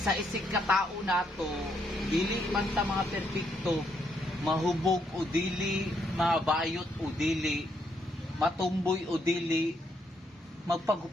isig ka tao nato, dili man ta mga perpekto, mahubog o dili, mabayot o dili, matumboy o dili,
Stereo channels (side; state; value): both; normal; correlation 0.75